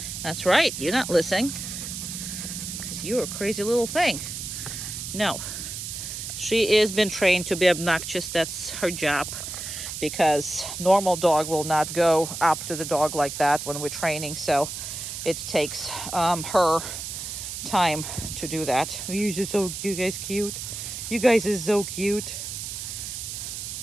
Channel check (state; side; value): noise; right; hiss, 7 dB below the sound